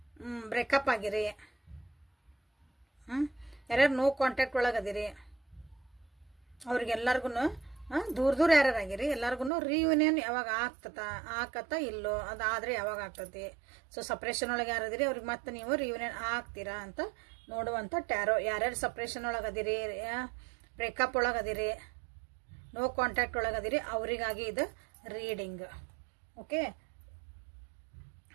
ಬ್ರೇಕಪ್ ಆಗಿರಿ, ಯಾರ್ಯಾರು ನೋ ಕಾಂಟ್ಯಾಕ್ಟ್ ಒಳಗದಿರಿ, ಅವ್ರಿಗೆಲ್ಲರಿಗೂ ದೂರ ದೂರ ಯಾರ್ಯಾರಾಗಿರಿ ಎಲ್ಲರಿಗೂ ರಿಯೂನಿಯನ್ ಯಾವಾಗ ಆಕತ್ತ ಇಲ್ಲೋ, ಅದಾದ್ರೆ ಯಾವಾಗ ಆಗ್ತತಿ. ಸೊ ಸಪ್ರೇಷನ್ ಒಳಗೆ ಯಾರದಿರಿ ಅವ್ರಿಗೆ ಮತ್ತೆ ನೀವು ರಿಯೂನಿಯನ್ ಆಗ್ತೀರಾ ಅಂತ ನೋಡುವಂಥ ಟ್ಯಾರೋ. ಯಾರ್ಯಾರು ಸಪ್ರೇಷನ್ ಒಳಗದಿರಿ, ಬ್ರೇಕಪ್ ಒಳಗದಿರಿ, ನೋ ಕಾಂಟ್ಯಾಕ್ಟ್ ಒಳಗದಿರಿ ಅವರಿಗಾಗಿ ಇದು reading. Okay,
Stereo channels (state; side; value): drops out; left; at 9.5 s